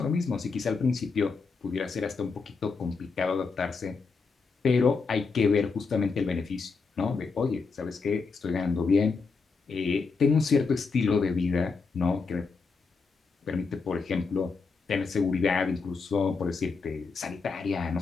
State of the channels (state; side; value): quieter; right; 4.6 dB